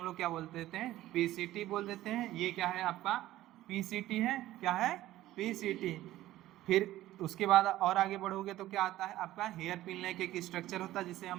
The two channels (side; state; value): left; quieter; 15.1 dB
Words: लोग क्या बोल देते हैं, पीसीटी बोल देते हैं। ये क्या है आपका, पीसीटी है, क्या है, पीसीटी। फिर उसके बाद और आगे बढ़ोगे तो क्या आता है आपका, हेयर पिन लाइक एक स्ट्रक्चर होता है, जिसे